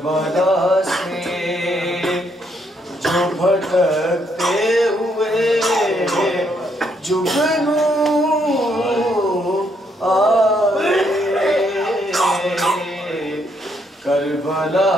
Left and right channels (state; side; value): normal; both; correlation 0.73